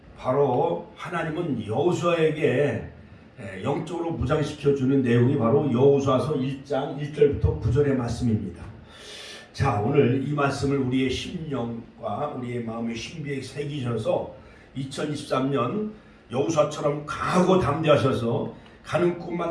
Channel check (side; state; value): both; identical; correlation 1.00